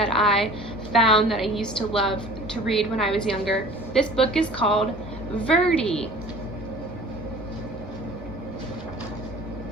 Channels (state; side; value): normal; both; correlation 0.46